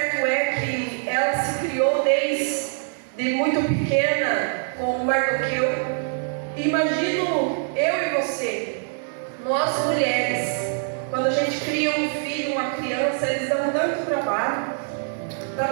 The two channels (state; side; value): silent; left; 63 dB below the other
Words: é que ela se criou desde muito pequena com Mardoqueu. Imagino eu e você, nós mulheres, quando a gente cria um filho, uma criança, eles dão tanto trabalho para